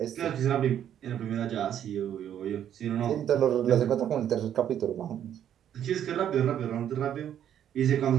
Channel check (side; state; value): left; quieter; 10.1 dB